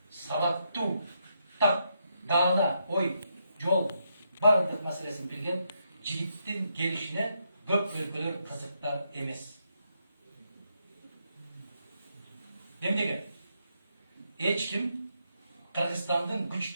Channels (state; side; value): inverted; both; correlation -0.80